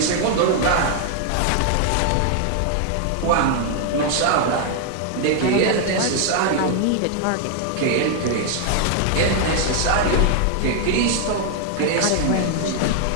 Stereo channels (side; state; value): both; different; correlation 0.00